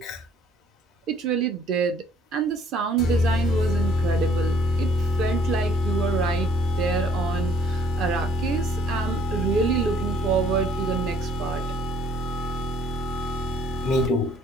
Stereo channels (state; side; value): normal; both; correlation 0.60